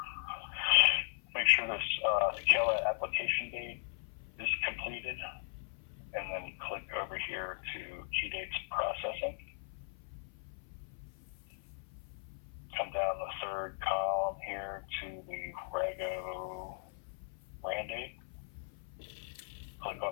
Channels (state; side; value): silent; right; 53 dB below the other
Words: Make sure this Kela application date is completed, and then click over here to key dates processing. Come down the third column here to the Rego RAN date. Click